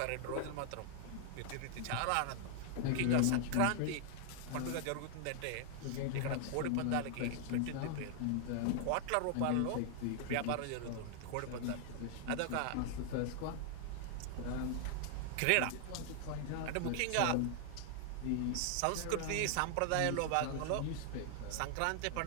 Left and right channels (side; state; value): both; different; correlation 0.00